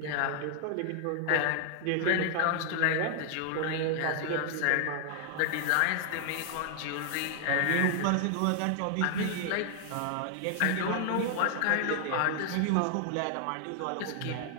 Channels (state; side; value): different; both; correlation 0.00